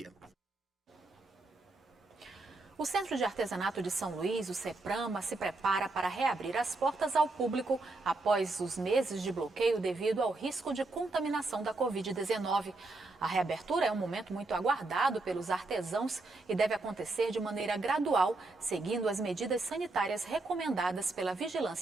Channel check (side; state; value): left; quieter; 3.2 dB